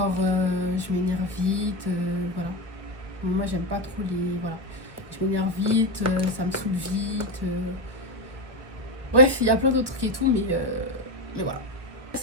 je m'énerve vite, voilà. Moi, j'aime pas trop les... Voilà. Je m'énerve vite, ça me saoule vite. Bref, il y a plein d'autres trucs et tout, mais voilà.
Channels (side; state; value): left; late; 1.3 ms